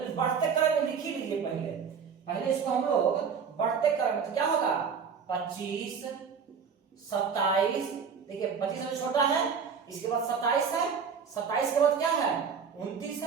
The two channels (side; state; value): left; quieter; 6.3 dB